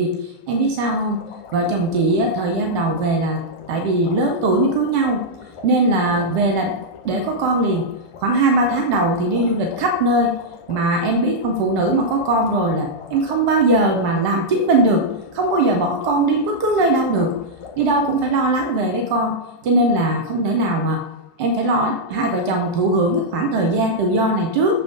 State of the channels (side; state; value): right; late; 1.5 ms